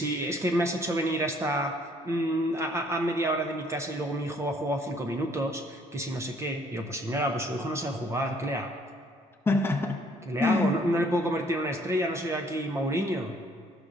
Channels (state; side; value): normal; both; correlation 0.62